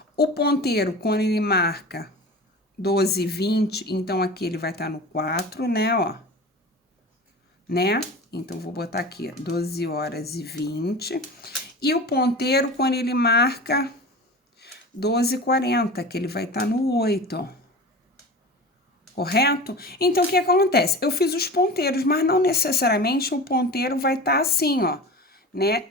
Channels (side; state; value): both; normal; correlation 0.33